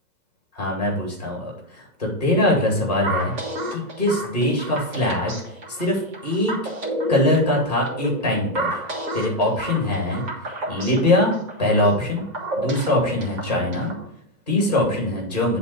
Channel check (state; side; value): late; left; 2.0 ms